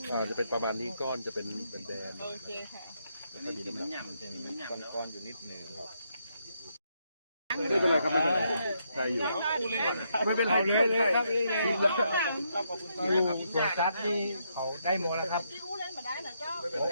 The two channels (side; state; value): both; inverted; correlation -0.77